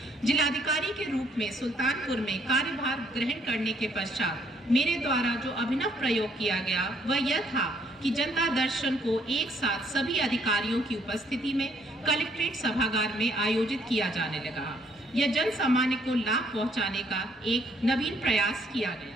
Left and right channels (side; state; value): both; normal; correlation 0.67